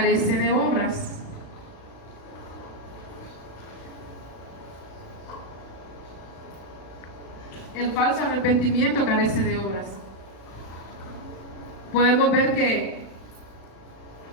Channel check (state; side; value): late; right; 36 ms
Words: de obras. El falso arrepentimiento carece de obras. Podemos ver que